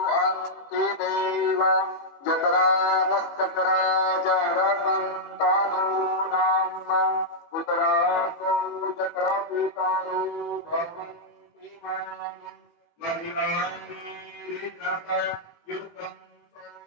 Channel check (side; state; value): right; late; 18 ms